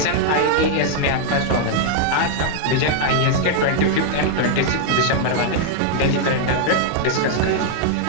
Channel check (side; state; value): both; different; correlation 0.00